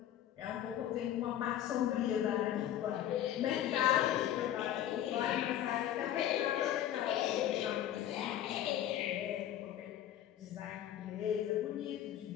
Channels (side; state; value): right; quieter; 11.6 dB